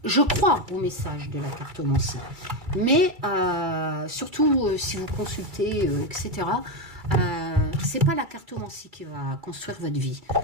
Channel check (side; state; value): left; late; 2.3 ms